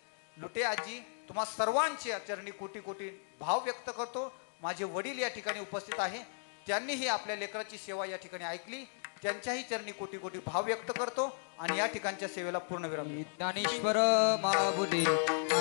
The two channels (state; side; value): silent; right; digital silence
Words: लुटे आजी, तुम्हा सर्वांचे चरणी कोटी कोटी भाव व्यक्त करतो. माझे वडील या ठिकाणी उपस्थित आहे, त्यांनीही आपल्या लेकराची सेवा या ठिकाणी ऐकली, त्यांच्याही चरणी कोटी कोटी भाव व्यक्त करतो आणि या ठिकाणच्या सेवेला पूर्ण विराम. ज्ञानेश्वर महाबुले,